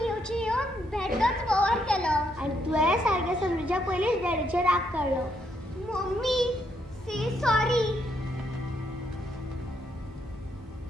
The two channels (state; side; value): normal; both; correlation 0.75